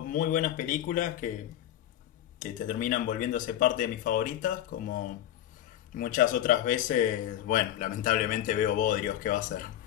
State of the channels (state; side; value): quieter; right; 12.1 dB